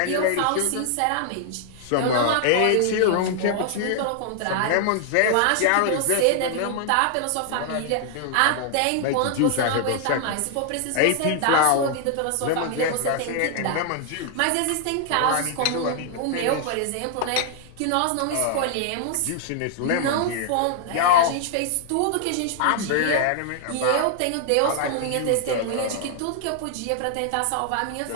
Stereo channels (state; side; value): different; both; correlation 0.00